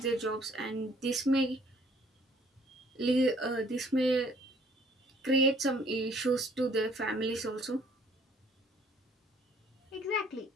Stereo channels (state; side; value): normal; both; correlation 0.59